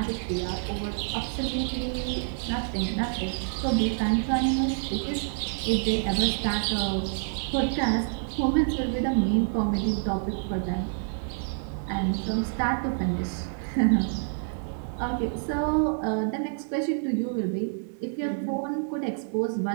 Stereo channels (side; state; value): left; silent; digital silence